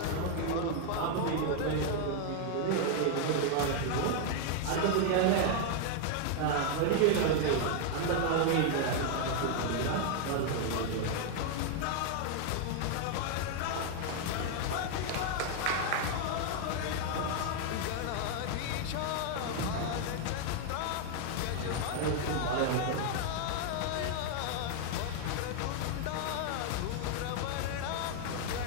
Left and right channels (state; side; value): different; both; correlation 0.00